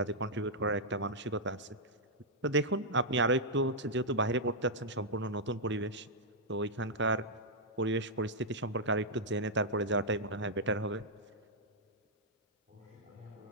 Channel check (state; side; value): normal; both; correlation -0.07